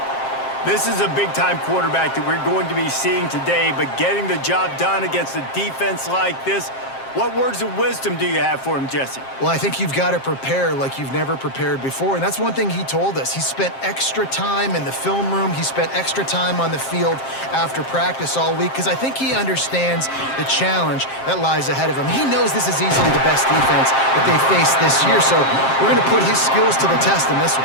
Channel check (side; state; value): right; late; 7.5 ms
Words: This is a big-time quarterback that we're going to be seeing today, but getting the job done against a defense like this, what words of wisdom do you have for him, Jesse? Well, I think you've got to prepare like you've never prepared before, and that's one thing he told us. He spent extra time in the film room. He spent extra time on the field after practice all week because I think he understands the challenge that lies ahead of him. He knows this is easily the best defense that they face this year, so we're going to put his skills to the test in this one.